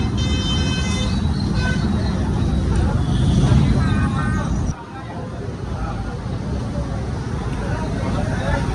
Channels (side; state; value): both; identical; correlation 1.00